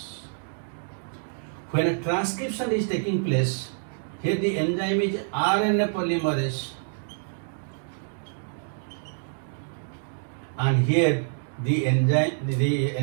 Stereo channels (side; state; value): left; silent; digital silence